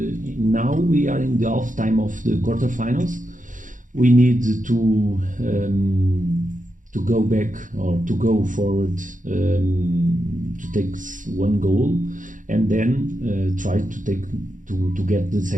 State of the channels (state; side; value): late; left; 0.38 ms